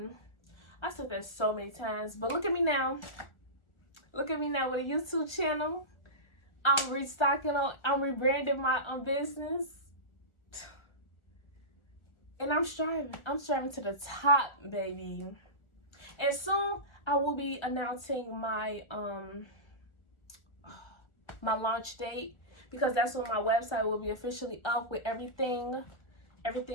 I said that so many times, but look at me now. Look at me now with a YouTube channel. I'm rebranding my business. And I'm striving. I'm striving to the top, baby. And soon I will be announcing my my launch date, because that's when my website will be officially up with everything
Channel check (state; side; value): late; right; 1.4 ms